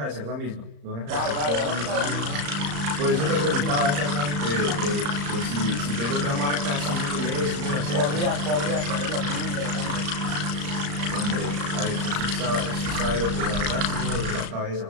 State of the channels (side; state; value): left; late; 35 ms